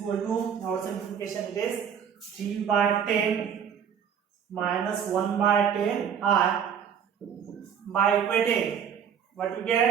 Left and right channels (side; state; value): left; quieter; 8.0 dB